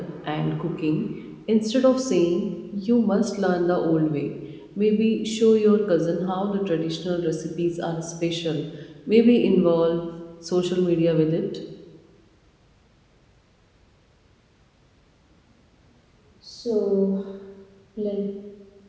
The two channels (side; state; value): both; identical; correlation 1.00